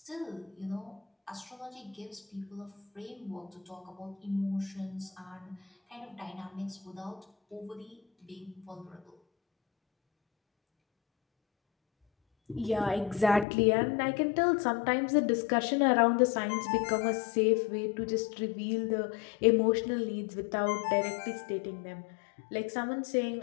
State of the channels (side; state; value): right; drops out; at 13.5 s